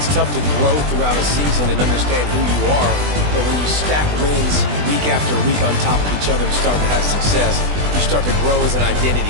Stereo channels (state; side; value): late; left; 20 ms